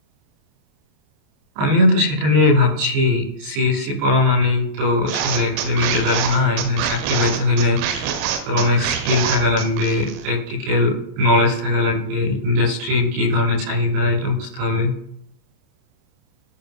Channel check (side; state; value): left; late; 29 ms